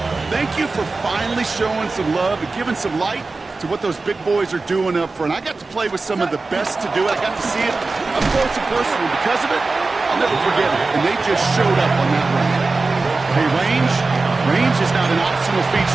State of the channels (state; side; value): quieter; left; 3.7 dB